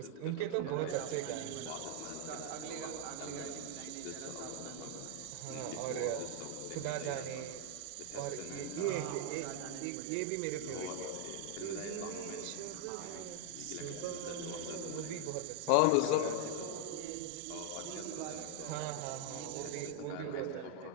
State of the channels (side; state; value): both; different; correlation 0.00